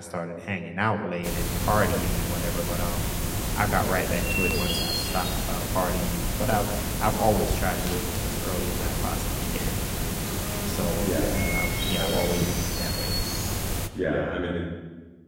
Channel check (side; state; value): both; identical; correlation 1.00